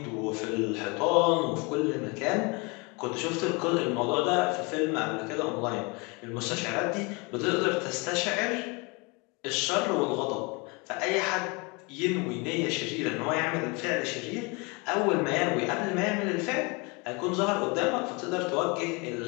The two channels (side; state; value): right; quieter; 29.0 dB